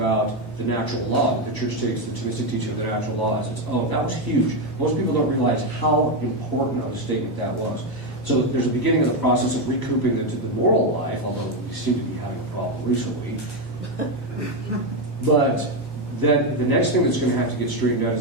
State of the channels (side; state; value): right; late; 1.0 ms